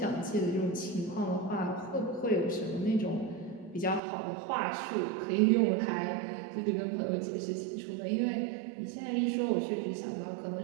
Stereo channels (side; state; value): left; drops out; at 4.0 s